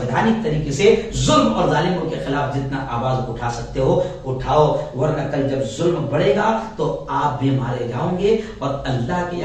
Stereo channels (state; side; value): identical; both; correlation 1.00